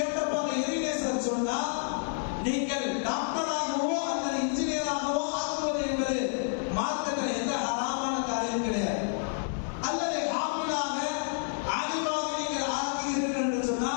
அந்த இறைநேசர் சொன்னா, நீங்கள் டாக்டராகவோ அல்லது இன்ஜினியராகவோ ஆகுவது என்பது மார்க்கத்தில் எந்த ஹராமான காரியம் கிடையாது. அல்லது ஹாஃபிலாக ஆலிமாக நீங்கள் ஆகிறீர்கள் என்று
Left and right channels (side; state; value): right; silent; 56 dB below the other